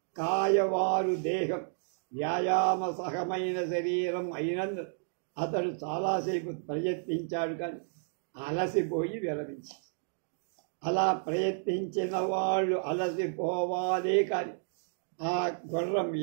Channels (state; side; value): silent; left; digital silence